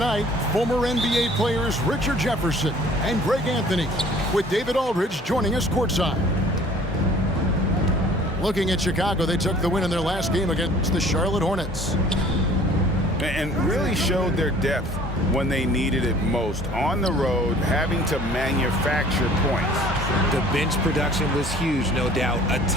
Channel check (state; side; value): normal; both; correlation 0.52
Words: former NBA players Richard Jefferson and Greg Anthony, with David Aldridge joining us courtside. Looking at Chicago, they took the win in their last game against the Charlotte Hornets. And really showed their depth when they needed it most. On the road, having to manufacture points. The bench production was huge, no doubt. A